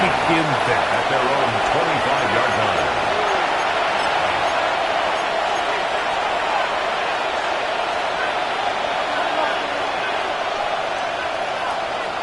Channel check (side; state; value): both; identical; correlation 1.00